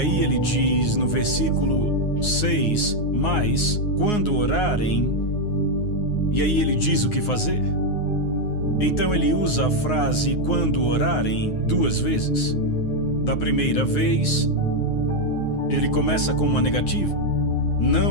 ele diz no versículo 6, "Mas quando orarem", e aí ele diz o que fazer. Então ele usa a frase "quando orarem" duas vezes. Da primeira vez, ele começa com uma negativa:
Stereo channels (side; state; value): right; late; 9.6 ms